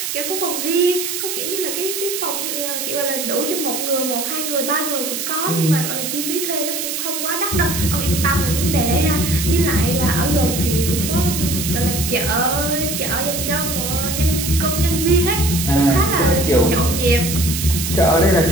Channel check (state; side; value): noise; right; hiss, 3 dB below the sound